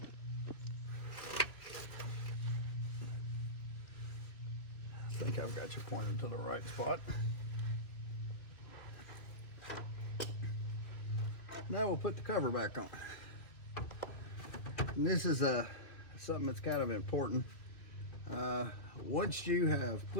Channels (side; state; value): right; late; 2.3 ms